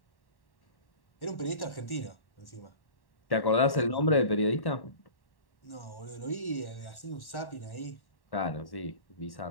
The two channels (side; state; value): right; late; 1.1 ms